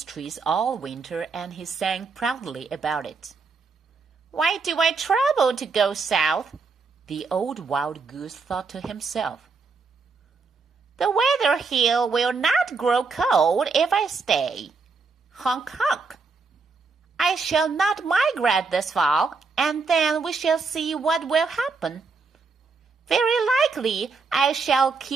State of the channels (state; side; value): quieter; left; 4.5 dB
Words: trees all winter, and he sang proudly about it. "Why do I travel to go south?" the old wild goose thought to himself. "The weather here will not grow cold if I stay. Honk, honk. I shall not migrate this fall, and then we shall see what will happen. Very likely I shall